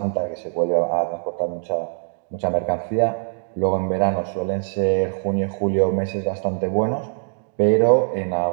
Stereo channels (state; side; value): silent; left; digital silence